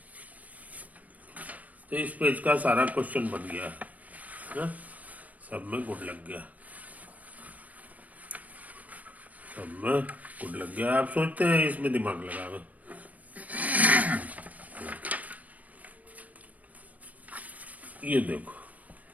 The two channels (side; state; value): left; late; 0.072 ms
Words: तो इस पेज का सारा क्वेश्चन बन गया है, सब में गुड लग गया, सब में गुड लग गया। आप सोचते हैं इसमें दिमाग लगावे, ये देखो,